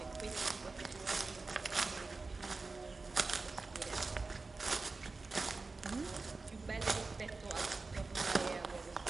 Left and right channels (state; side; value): quieter; left; 3.8 dB